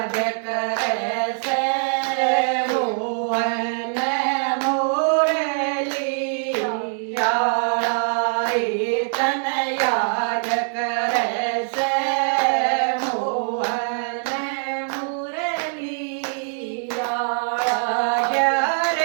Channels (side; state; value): left; silent; 64 dB below the other